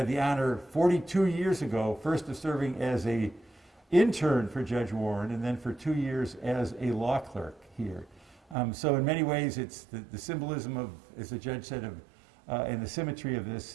the honor 42 years ago, first of serving as an intern for Judge Warren and then for 2 years as a law clerk here. So in many ways, it's the symbolism of, as the judge said, and the symmetry of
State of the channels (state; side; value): drops out; left; at 8.6 s